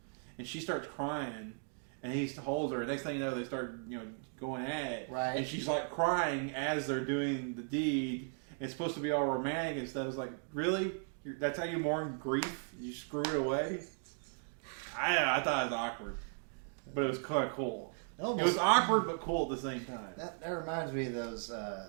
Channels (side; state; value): left; silent; 53 dB below the other